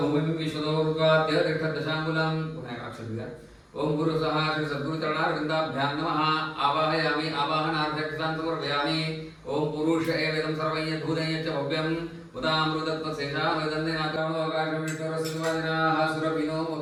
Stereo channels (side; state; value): both; identical; correlation 1.00